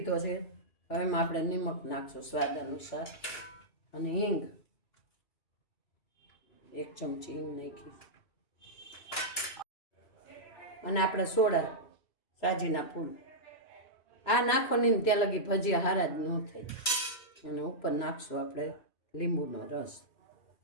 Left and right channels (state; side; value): late; right; 3.0 ms